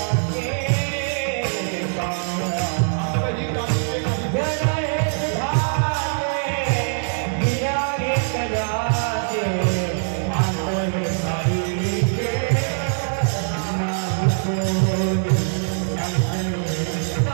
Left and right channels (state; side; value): silent; left; digital silence